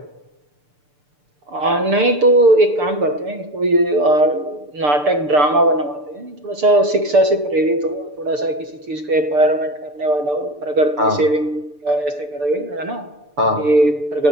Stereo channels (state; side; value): late; left; 6.8 ms